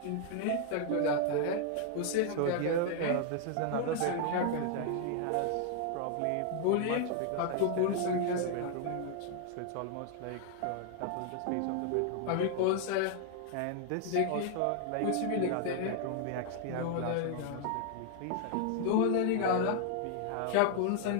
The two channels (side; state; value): both; different; correlation 0.00